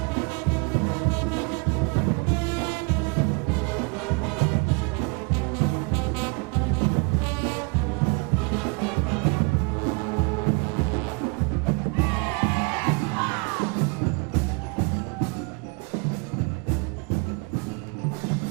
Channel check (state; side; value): quieter; left; 31.3 dB